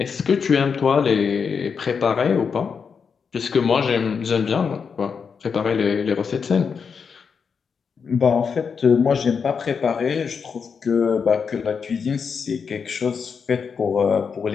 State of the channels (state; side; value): quieter; right; 6.1 dB